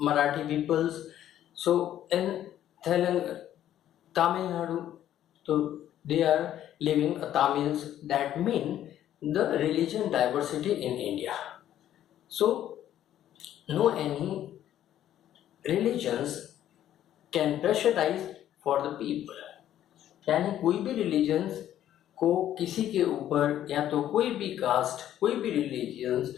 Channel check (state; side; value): quieter; right; 11.6 dB